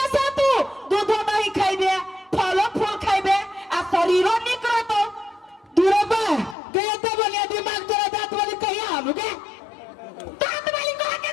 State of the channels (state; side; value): drops out; right; at 6.6 s